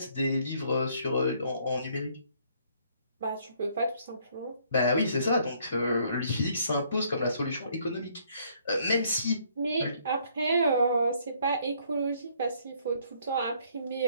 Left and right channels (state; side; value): inverted; both; correlation -0.65